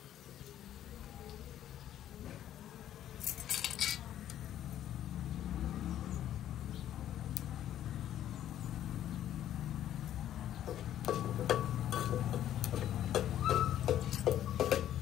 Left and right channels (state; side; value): quieter; right; 11.5 dB